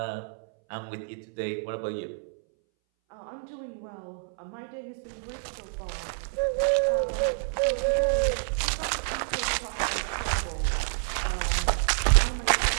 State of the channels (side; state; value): left; silent; 59 dB below the other